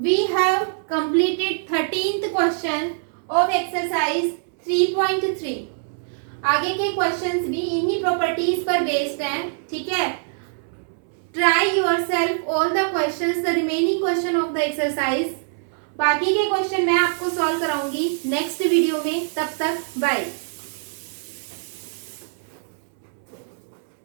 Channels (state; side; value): silent; left; 63 dB below the other